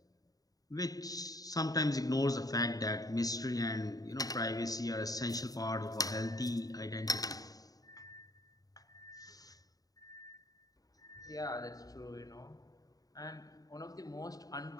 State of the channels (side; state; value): right; late; 0.18 ms